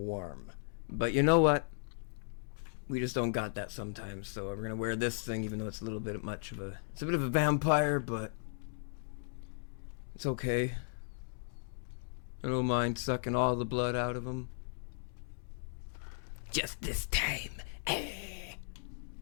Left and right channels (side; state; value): right; silent; digital silence